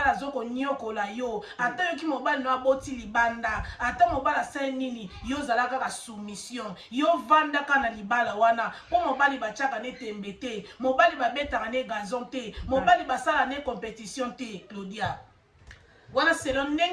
azokonyokola yo ata yoki mobali no aboti libanda ata mobali asali nini yo ozala kaka soumission yo vandaka na libala wana mpo mobali batiaka ne tembe te mobali babetaka ne gazon te mobali basala ne compétition te Claudia wana selon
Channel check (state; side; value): identical; both; correlation 1.00